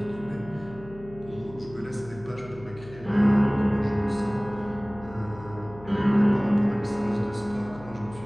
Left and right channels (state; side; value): noise; left; hum, 18 dB below the sound